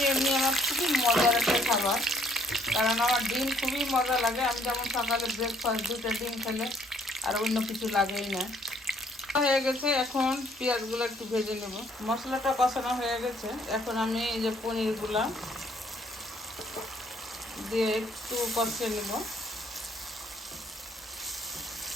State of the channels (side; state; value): both; normal; correlation 0.64